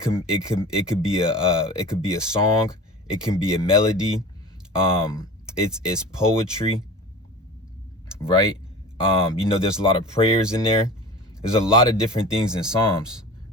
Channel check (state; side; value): normal; both; correlation 0.37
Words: could be a song. It can be a melody. It's poetry, right? There's a lot of prayers in there. There's a lot of different things in Psalms,